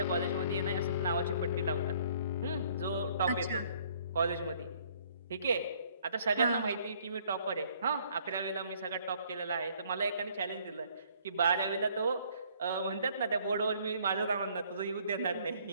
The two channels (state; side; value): inverted; both; correlation -0.61